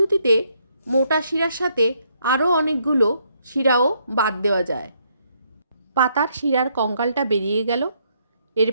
মোটা শিরার সাথে আরও অনেকগুলো শিরাও বাদ দেওয়া যায়। পাতার শিরার কঙ্কালটা বেরিয়ে গেল।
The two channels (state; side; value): inverted; both; correlation -0.73